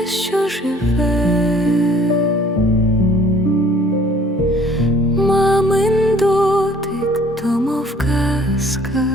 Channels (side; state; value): both; normal; correlation 0.55